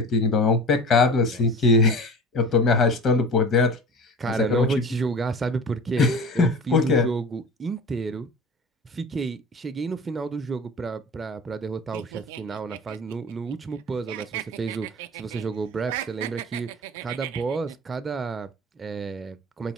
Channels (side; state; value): both; normal; correlation 0.36